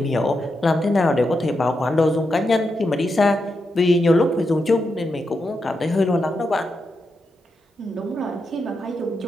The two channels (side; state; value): both; normal; correlation 0.85